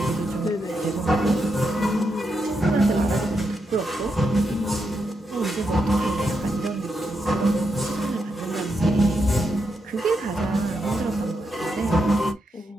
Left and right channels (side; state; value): both; normal; correlation 0.83